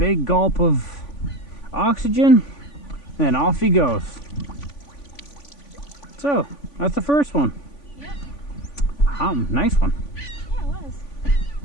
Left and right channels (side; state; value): right; late; 3.5 ms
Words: gulp of oxygen, and then off he goes. So, that's the first one. Yep. Nice one. Yeah, it was.